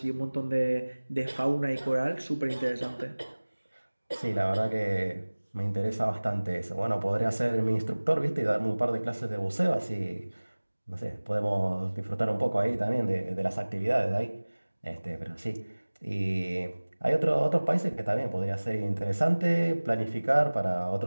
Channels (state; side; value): inverted; both; correlation -1.00